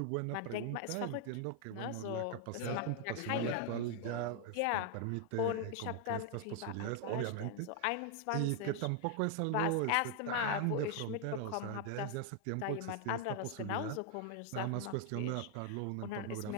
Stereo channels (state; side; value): different; both; correlation 0.00